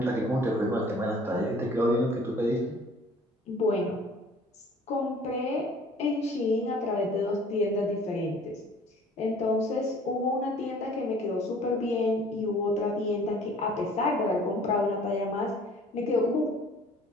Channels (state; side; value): normal; both; correlation 0.52